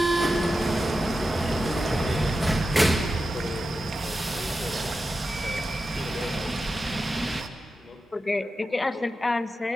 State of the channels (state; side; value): normal; both; correlation 0.91